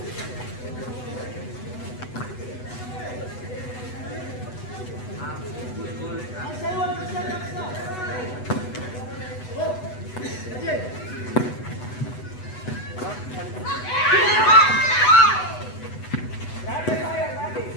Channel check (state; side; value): late; right; 8.1 ms